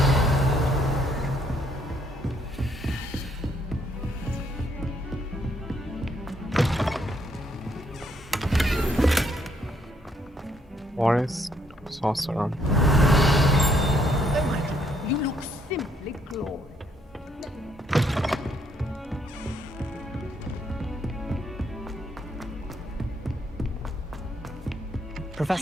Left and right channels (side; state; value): both; normal; correlation 0.70